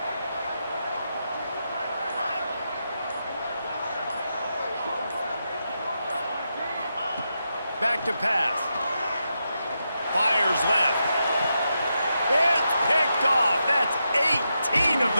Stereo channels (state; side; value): inverted; both; correlation -0.85